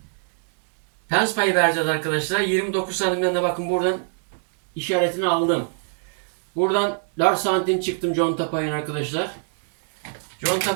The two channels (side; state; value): left; silent; 63 dB below the other